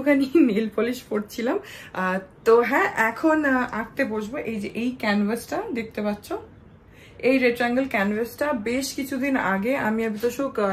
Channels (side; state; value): both; identical; correlation 1.00